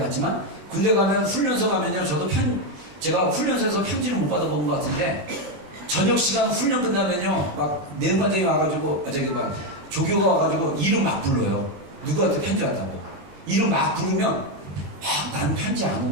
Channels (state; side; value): late; left; 20 ms